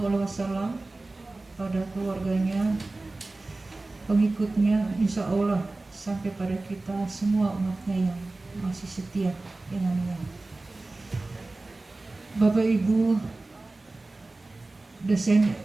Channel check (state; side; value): quieter; left; 3.1 dB